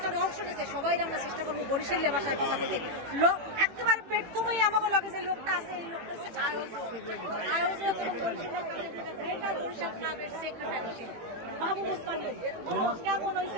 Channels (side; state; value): left; late; 18 ms